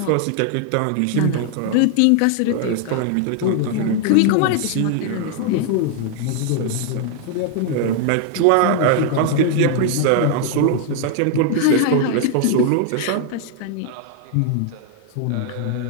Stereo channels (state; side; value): different; both; correlation 0.00